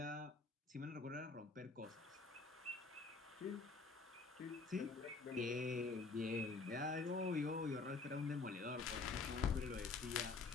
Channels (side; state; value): right; quieter; 4.1 dB